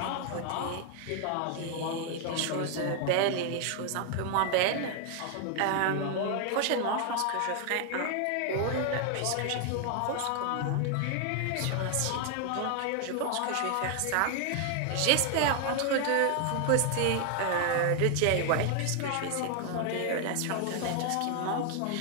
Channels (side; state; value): both; different; correlation 0.00